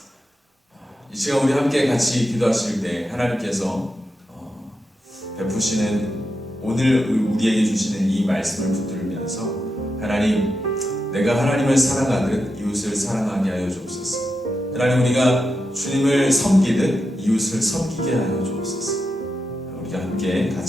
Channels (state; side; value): normal; both; correlation 0.87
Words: 이 시간 우리 함께 같이 기도하실 때 하나님께서 베푸시는 오늘 우리에게 주시는 이 말씀을 붙들면서 하나님, 내가 하나님을 사랑하듯 이웃을 사랑하게 하여 주옵소서. 하나님, 우리가 주님을 섬기듯 이웃을 섬기게 하여 주옵소서. 우리가 함께